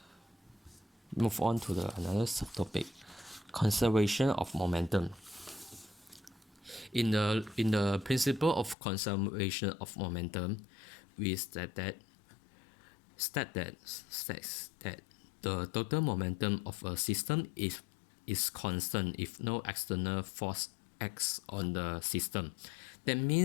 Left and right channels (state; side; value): drops out; right; at 8.8 s